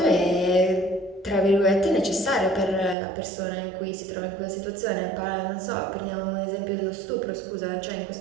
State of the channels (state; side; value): drops out; left; at 3.0 s